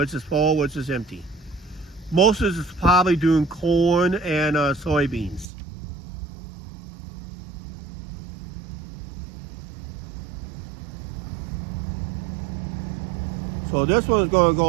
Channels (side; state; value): left; drops out; at 5.5 s